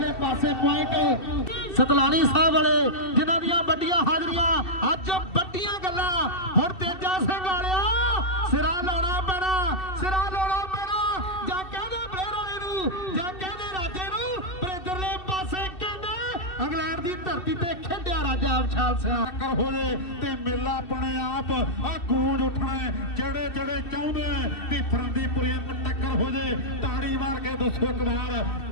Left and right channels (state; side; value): late; right; 2.7 ms